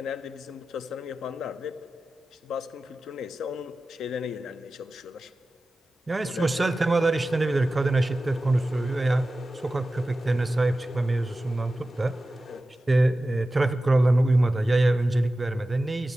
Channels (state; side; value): normal; both; correlation 0.95